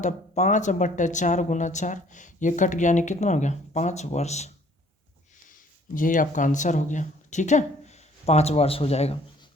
5/4 × 4। ये कट गया यानी कितना हो गया 5 वर्ष। यही आपका आंसर हो गया। ठीक है, 5 वर्ष हो जाएगा।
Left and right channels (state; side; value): normal; both; correlation 0.58